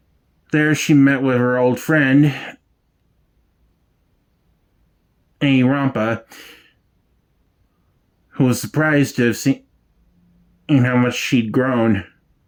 There she met with her old friend, Annie Rampa, who was surprised to have seen how much she'd grown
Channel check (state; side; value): identical; both; correlation 1.00